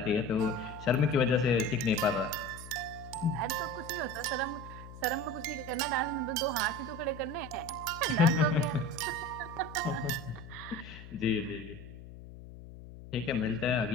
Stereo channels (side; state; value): left; noise; hum, 15 dB below the sound